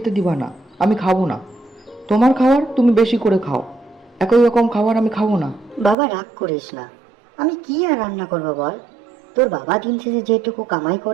দিবা না? আমি খাবো না। তোমার খাবার তুমি বেশি করে খাও, একই রকম খাবার আমি খাবো না। বাবা রাগ করিস না, আমি কি আর রান্না করবো বল? তোর বাবা দিন শেষে যেটুকু কামাই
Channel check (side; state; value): left; drops out; at 6.0 s